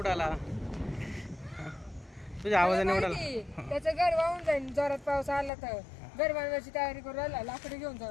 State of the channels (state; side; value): drops out; right; at 5.5 s